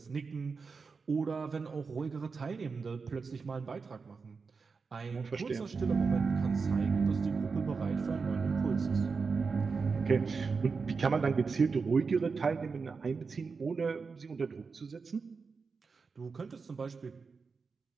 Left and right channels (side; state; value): left; quieter; 4.9 dB